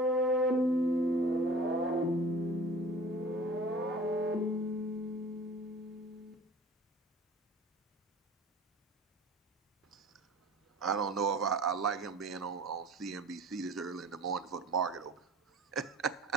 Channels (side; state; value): both; normal; correlation 0.43